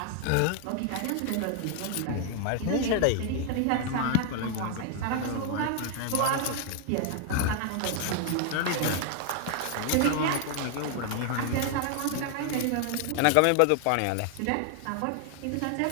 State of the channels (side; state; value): both; different; correlation 0.00